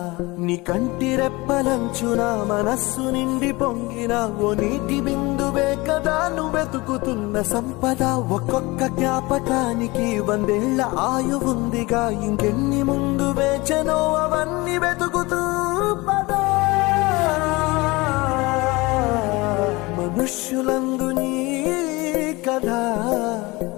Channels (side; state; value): right; quieter; 22.9 dB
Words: నీ కంటి రెప్పలంచున మనస్సు నిండి పొంగిన ఓ నీటి బిందువే కదా నువ్వెతుకుతున్న సంపద. ఒక్కొక్క జ్ఞాపకానికి 100 ఏళ్ల ఆయువుందిగా, ఇంకెన్ని ముందు వేచనో అవన్నీ వెతుకుతూ పదా. మనుష్యులందు నీ కథ